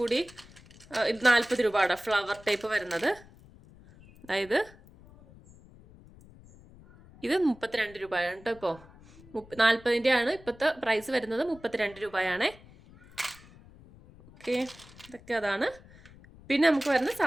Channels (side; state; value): left; noise; rumble, 23 dB below the sound